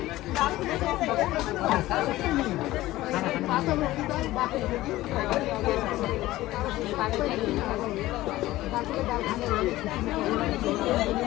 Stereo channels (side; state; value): right; quieter; 16.8 dB